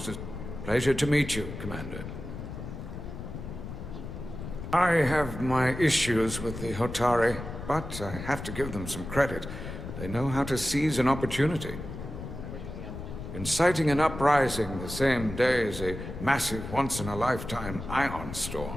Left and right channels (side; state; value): left; noise; rumble, 9 dB below the sound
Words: Pleasure to meet you, Commander. I have my issues with the Hotari, but I have to give them some credit. They know how to seize an opportunity. Inciting an uprising the same day as a massive, once-in-a-lifetime ion